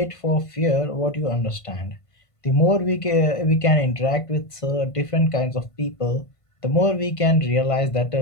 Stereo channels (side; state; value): right; late; 1.5 ms